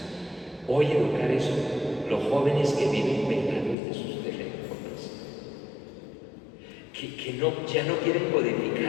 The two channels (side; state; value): right; drops out; at 3.8 s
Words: Hoy educar eso, los jóvenes que viven pegados de sus teléfonos, que ya no quieren